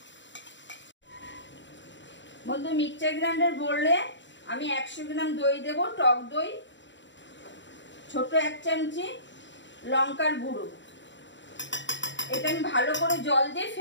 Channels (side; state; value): right; late; 0.53 ms